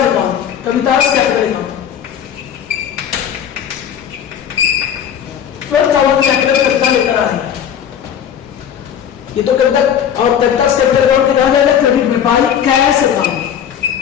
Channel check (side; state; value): right; quieter; 9.0 dB